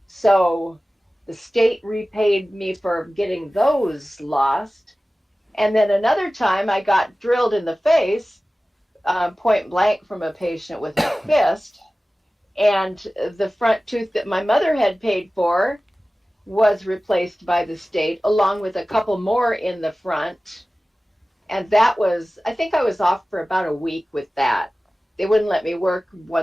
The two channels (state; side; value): normal; both; correlation 0.97